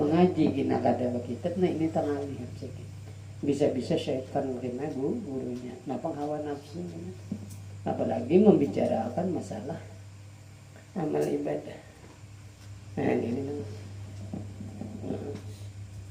mengaji gina kada kitab, nah ini tangalih sedikit. Bisa-bisa syaitan kena gurunya. Napang hawa nafsu. Apalagi membicarakan masalah amal ibadah. Nah, ini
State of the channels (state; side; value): identical; both; correlation 1.00